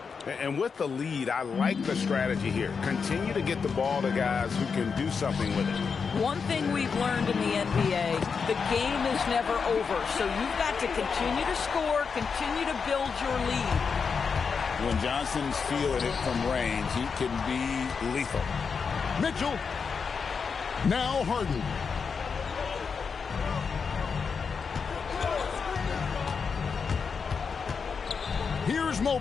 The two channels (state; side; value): quieter; right; 5.7 dB